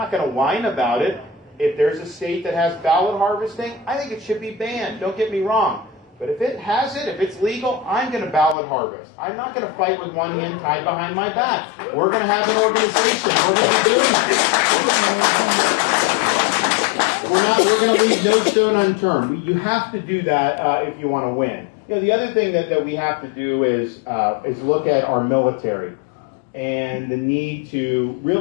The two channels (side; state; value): right; drops out; at 8.6 s